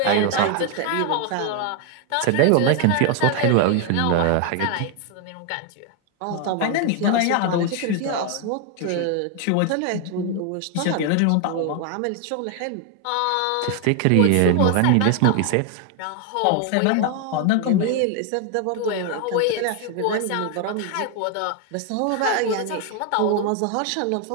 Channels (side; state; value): both; different; correlation 0.01